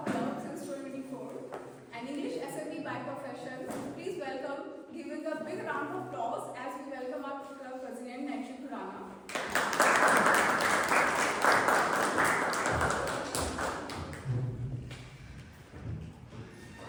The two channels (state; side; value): identical; both; correlation 1.00